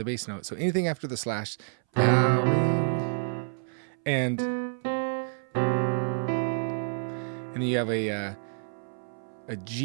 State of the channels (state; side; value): silent; left; 59 dB below the other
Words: bass note. So anything after the slash, bowing, and then you have a